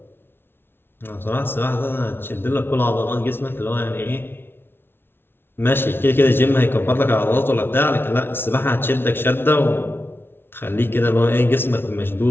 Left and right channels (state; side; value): late; right; 0.11 ms